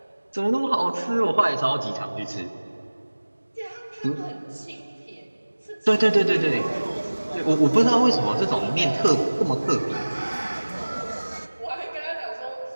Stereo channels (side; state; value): both; inverted; correlation -1.00